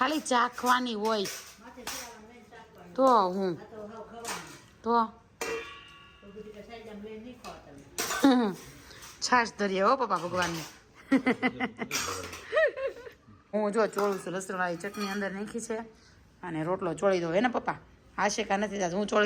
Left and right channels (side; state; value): both; identical; correlation 1.00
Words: ચાખવાની હોય તો હું તો છાશ ધરીએ હો પપ્પા ભગવાનને હું જો ચોળું છું લસણવાળી ચટણી અંદર નાખી છે અને રોટલો ચોળી દો હે ને પપ્પા આશેકા નથી થતા હું